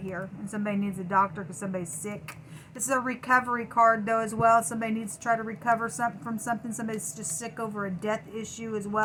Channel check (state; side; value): identical; both; correlation 1.00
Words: And somebody needs a doctor because somebody's sick. This is a recovery card, though, as well. Somebody needs to try to recover from something. Somebody's just sick over a death issue as